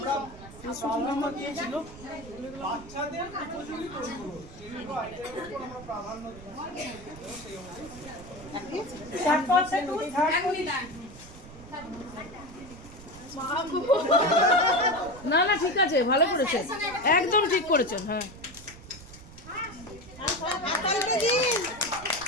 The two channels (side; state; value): right; noise; rumble, 17 dB below the sound